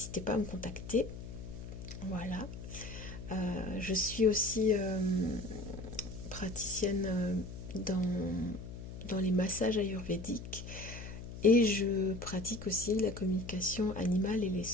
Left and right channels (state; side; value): noise; left; hum, 10 dB below the sound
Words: pas à me contacter. Voilà. Je suis aussi praticienne dans les massages ayurvédiques et je pratique aussi la communication animale et les